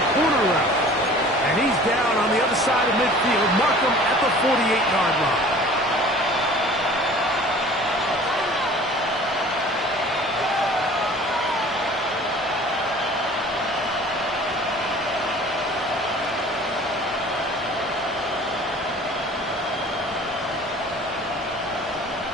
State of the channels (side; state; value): both; normal; correlation 0.46